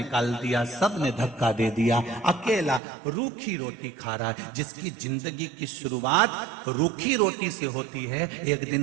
दिया, सबने धक्का दे दिया, अकेला रूखी रोटी खा रहा है। जिसकी जिंदगी की शुरुआत रूखी रोटी से होती है, एक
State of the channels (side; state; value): left; drops out; at 2.8 s